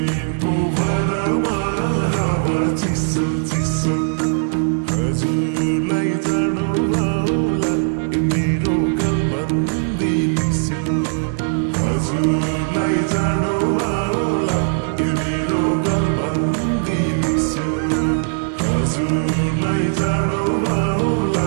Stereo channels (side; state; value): left; silent; digital silence